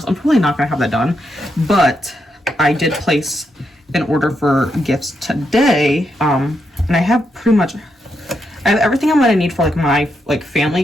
I'm probably not going to have that done. But I did place an order for gifts today, and I have pretty much everything I'm gonna need for like my like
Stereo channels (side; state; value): both; normal; correlation 0.82